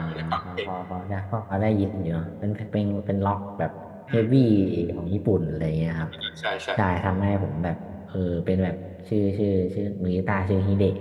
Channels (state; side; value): identical; both; correlation 1.00